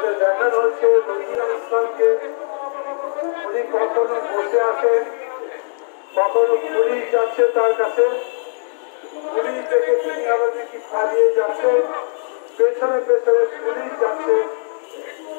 দেখানো হচ্ছে রোজিনা ইসলামকে উনি কখনো বসে আছেন, কখনো পুলিশ যাচ্ছে তার কাছে, পুলিশ থেকে তিনি আবার নাকি পালিয়ে যাচ্ছে, পেছনে পেছনে পুলিশ যাচ্ছে।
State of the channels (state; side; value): silent; right; 65 dB below the other